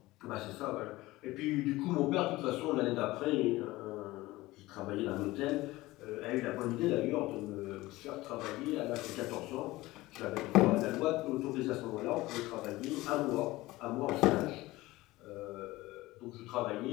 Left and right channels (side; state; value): right; quieter; 18.9 dB